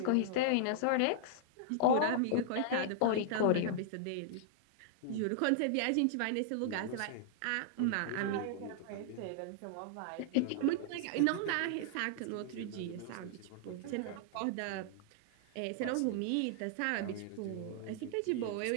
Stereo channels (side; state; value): both; different; correlation -0.01